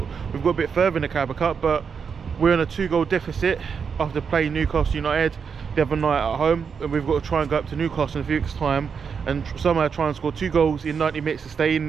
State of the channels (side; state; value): left; quieter; 6.3 dB